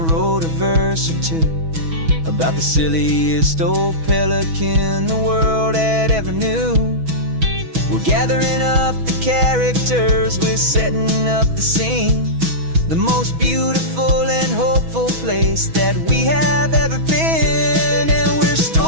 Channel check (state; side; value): late; left; 6.2 ms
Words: a verse or two about the silliest old pelican the world had ever knew. We're gathering up the characters, we're setting up the scene, the most beautiful and hopeful place that we have ever been. And we're